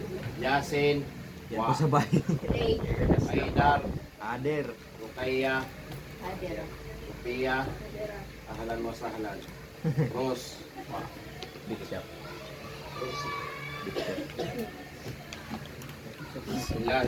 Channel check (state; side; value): identical; both; correlation 1.00